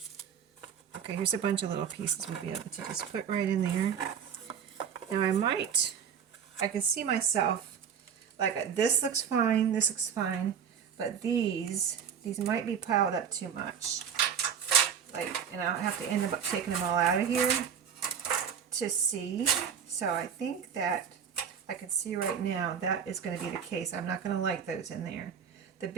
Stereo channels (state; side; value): quieter; left; 7.6 dB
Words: Okay, here's a bunch of little pieces we'll be able to just put right in there. Now I can see myself, like, this looks fine, but these these might be piled up too much. And I'll have to end up taking them all out of here to see. So I think that I can see right now that is going to be the case. I'm not going to like those in there. The